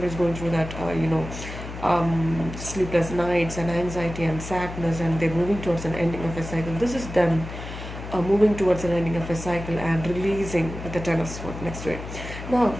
going through that, sleepless nights and anxiety and sadness, and they're moving towards an ending of a cycle. This is them moving towards an ending of a cycle and releasing with the Ten of Swords next to it. Now,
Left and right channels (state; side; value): noise; left; hum, 10 dB below the sound